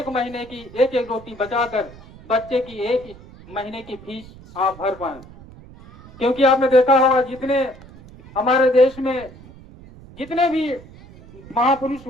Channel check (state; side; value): noise; right; rumble, 20 dB below the sound